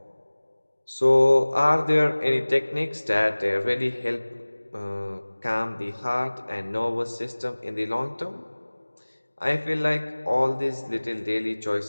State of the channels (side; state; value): both; inverted; correlation -1.00